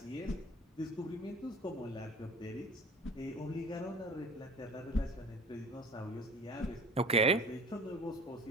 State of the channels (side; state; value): both; normal; correlation 0.43